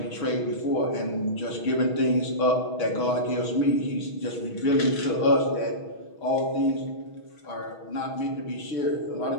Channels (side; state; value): right; late; 6.3 ms